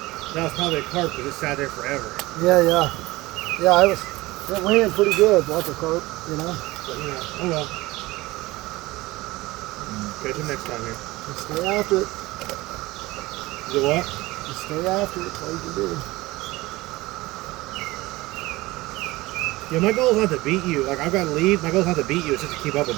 That was probably a carp because it sat there forever. Yeah. Yeah, it ran pretty good, like a carp, you know. But oh well. Catch him next time here. Just stay after it. Is it what? Just stay after it. That's all you can do. Yeah, my goal is not to beat you. Like, I've got to lead. My goal is not to beat you. It's just to keep up with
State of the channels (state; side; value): quieter; left; 20.1 dB